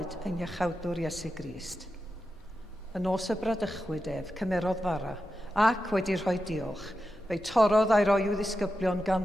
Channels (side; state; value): both; normal; correlation 0.90